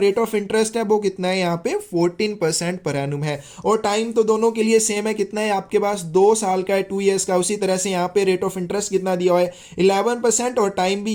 ऑफ इंटरेस्ट है वो कितना है, यहाँ पे 14% पर एनुम है और टाइम तो दोनों के लिए सेम है, कितना है आपके पास, 2 साल का है, 2 ईयर्स का। उसी तरह से यहाँ पे रेट ऑफ इंटरेस्ट कितना दिया हुआ है, 11% और टाइम भी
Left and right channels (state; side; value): identical; both; correlation 1.00